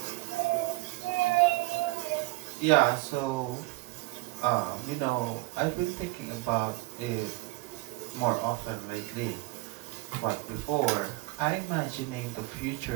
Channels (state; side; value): quieter; left; 23.0 dB